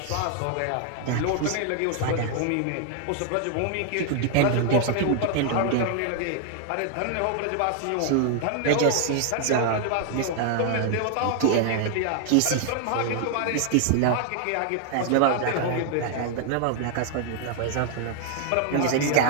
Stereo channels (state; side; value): different; both; correlation 0.00